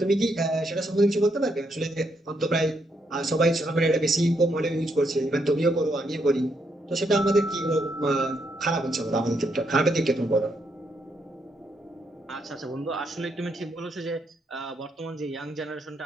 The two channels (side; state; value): both; normal; correlation 0.77